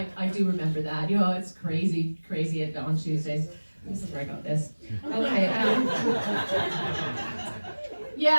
do remember that. You know, it's crazy on Tuesdays. This is where I got this. Okay.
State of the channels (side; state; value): both; inverted; correlation -1.00